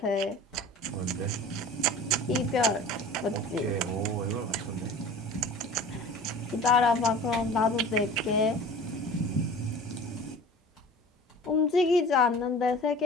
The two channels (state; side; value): normal; both; correlation 0.41